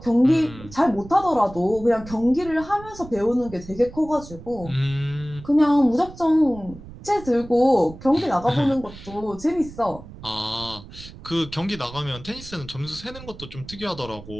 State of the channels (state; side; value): noise; right; rumble, 16 dB below the sound